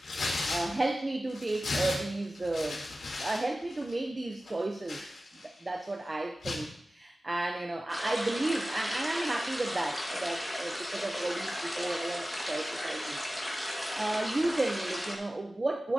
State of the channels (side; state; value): both; normal; correlation 0.96